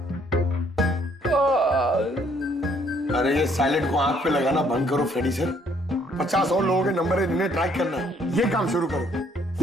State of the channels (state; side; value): normal; both; correlation 0.65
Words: अरे ये साइलेंट को आंख पे लगाना बंद करो फ्रेडी सर। 50 और लोगों के नंबर है जिन्हें ट्रैक करना है, ये काम शुरू करो।